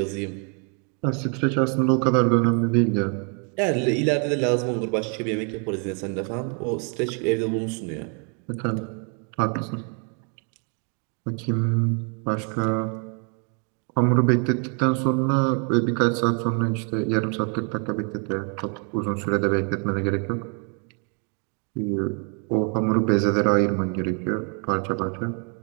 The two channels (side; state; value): left; quieter; 39.1 dB